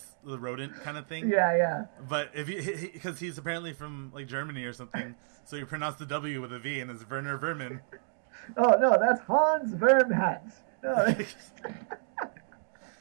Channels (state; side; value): silent; left; digital silence